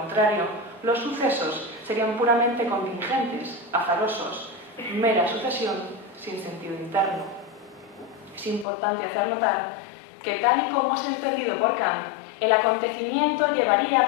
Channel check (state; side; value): drops out; right; at 8.7 s